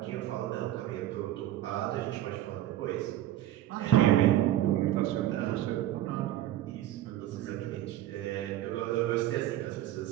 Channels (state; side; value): quieter; left; 13.4 dB